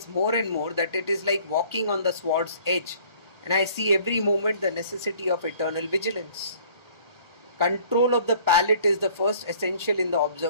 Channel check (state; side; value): late; left; 1.4 ms